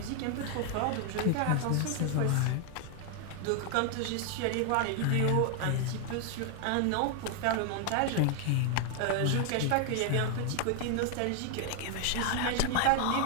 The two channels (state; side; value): different; both; correlation 0.00